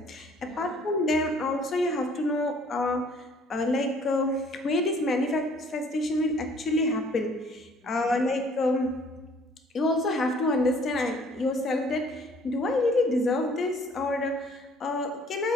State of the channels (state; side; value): normal; both; correlation 0.57